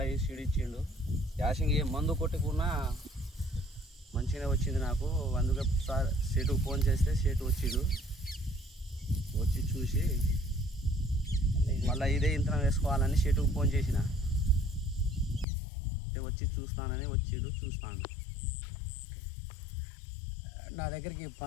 సీడు ఇచ్చిండు. యాసింగ్ ఏ మందు కొట్టుకున్నా మంచిగా వచ్చింది నాకు. అందుకే సార్ సేటుకు ఫోన్ చేస్తే సేటు వచ్చిండు. వచ్చి చూసి మళ్ళీ ఇదే ఇంతనం వేసుకోవాలని సేటుకు ఫోన్ చేసిన. వచ్చి చూస్తానని వచ్చిండు. చూస్తాను. నా దగ్గరికి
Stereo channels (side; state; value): right; drops out; at 15.5 s